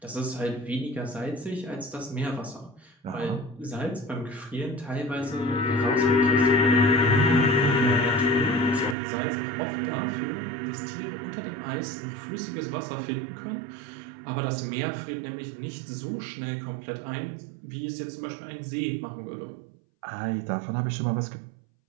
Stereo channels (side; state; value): left; drops out; at 9.0 s